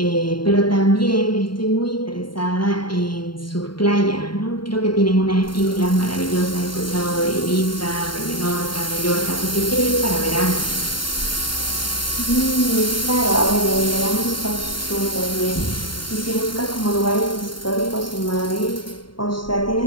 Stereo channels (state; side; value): late; right; 0.72 ms